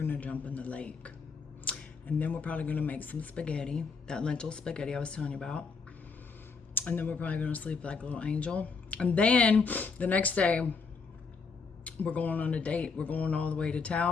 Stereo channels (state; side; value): quieter; right; 4.9 dB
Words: jump in the lake. And then we're probably gonna make some spaghetti, that lentil spaghetti I was telling you about. And then we're probably gonna sleep like a little angel. And then the next day, we're going on a date. We're going all the way to